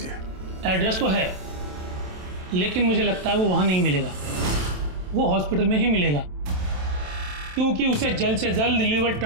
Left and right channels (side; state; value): left; late; 27 ms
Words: एड्रेस तो है, लेकिन मुझे लगता है वो वहां नहीं मिलेगा, वो हॉस्पिटल में ही मिलेगा, क्योंकि उसे जल्द से जल्द लीवर